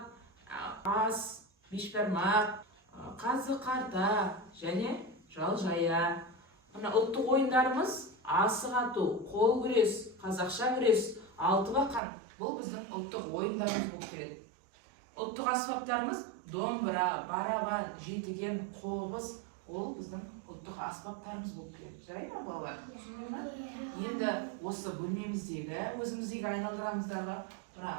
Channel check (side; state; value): left; drops out; at 12.0 s